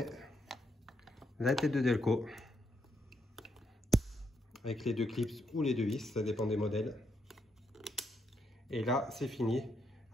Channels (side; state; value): both; normal; correlation 0.78